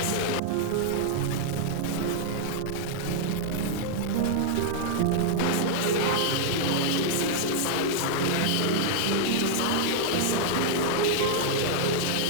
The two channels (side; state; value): both; different; correlation -0.01